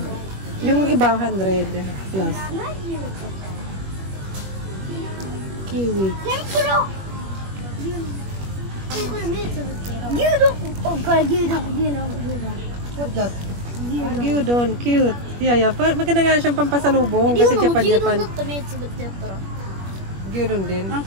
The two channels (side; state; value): left; late; 21 ms